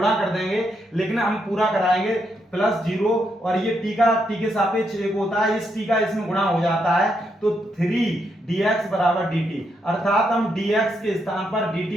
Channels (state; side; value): normal; both; correlation 0.79